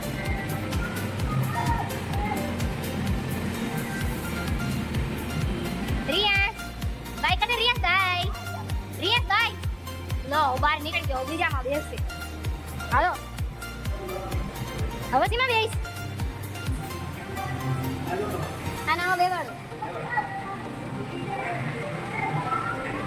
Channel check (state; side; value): identical; both; correlation 1.00